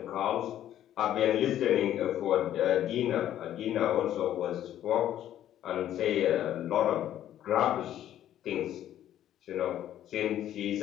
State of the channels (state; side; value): quieter; right; 11.7 dB